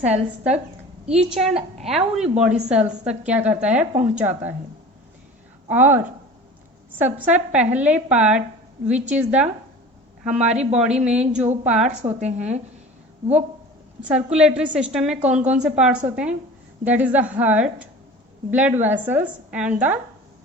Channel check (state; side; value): normal; both; correlation 0.39